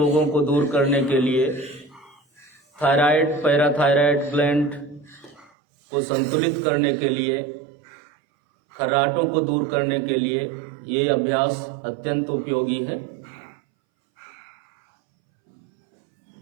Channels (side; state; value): left; drops out; at 5.5 s